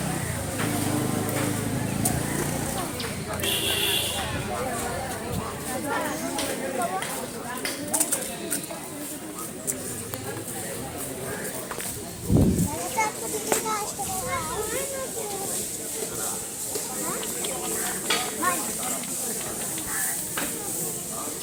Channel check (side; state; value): both; identical; correlation 1.00